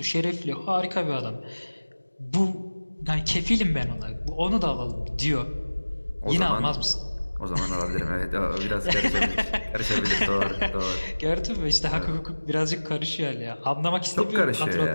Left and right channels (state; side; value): inverted; both; correlation -1.00